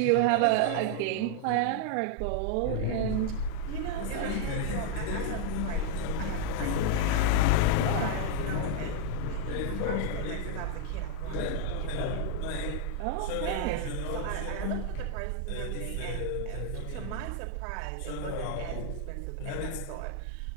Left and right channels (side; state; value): both; different; correlation 0.00